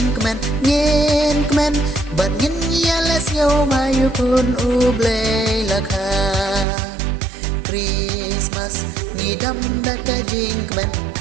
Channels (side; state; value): left; drops out; at 6.7 s